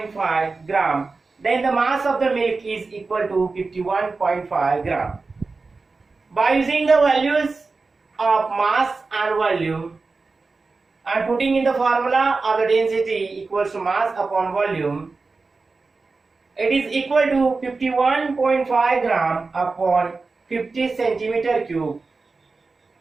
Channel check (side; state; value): left; quieter; 4.0 dB